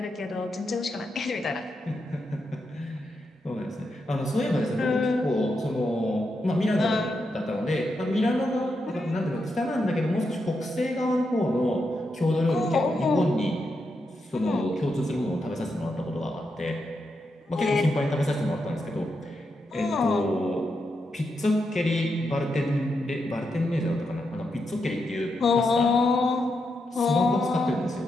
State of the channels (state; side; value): normal; both; correlation 0.84